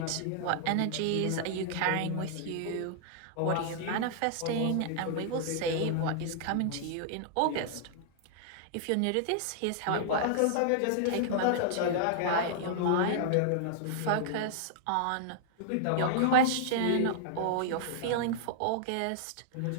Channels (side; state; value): both; different; correlation -0.01